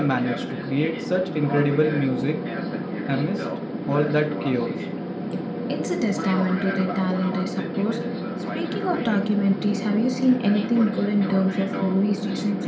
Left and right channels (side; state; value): both; identical; correlation 1.00